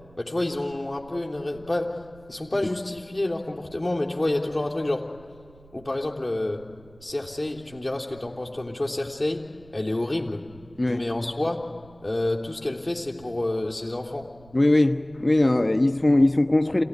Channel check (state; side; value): noise; right; rumble, 24 dB below the sound